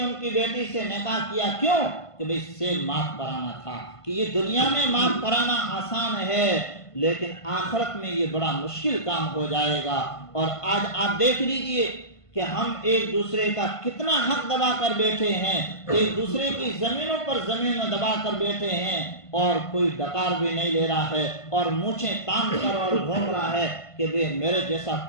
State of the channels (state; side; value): late; right; 1.5 ms